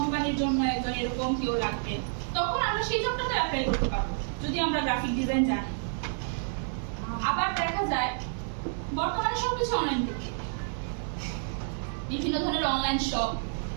জন্য একজন এরকম কেউ লাগবে, তখন আমরা সেই জবটাতে অ্যাপ্লাই করতে পারবো যদি আমরা গ্রাফিক ডিজাইন জানি। আবার দেখা যায় বর্তমানে সবকিছু অনলাইন ভিত্তিক, বিভিন্ন ধরনের অনলাইন শপ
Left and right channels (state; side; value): silent; left; digital silence